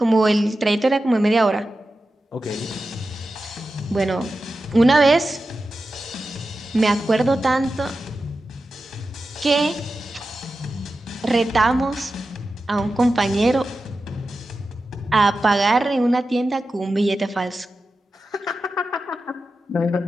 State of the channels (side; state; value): both; normal; correlation 0.92